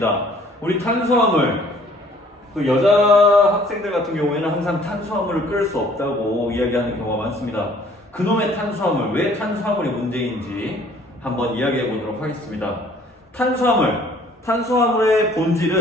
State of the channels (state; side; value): normal; both; correlation 0.56